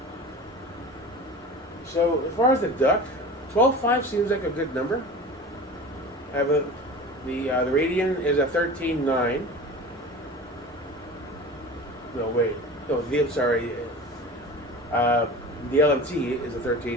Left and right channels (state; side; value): normal; both; correlation 0.35